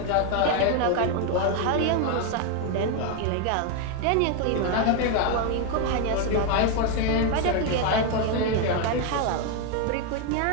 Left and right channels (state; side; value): different; both; correlation 0.01